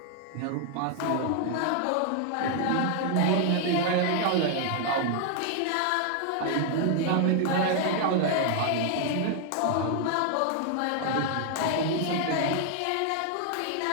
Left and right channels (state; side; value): different; both; correlation 0.00